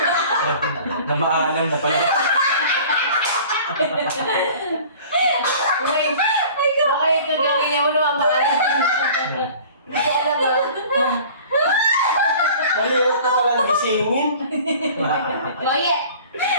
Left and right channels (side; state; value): both; inverted; correlation -0.45